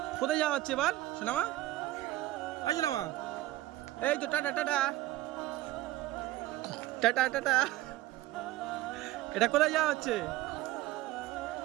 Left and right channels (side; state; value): left; quieter; 16.4 dB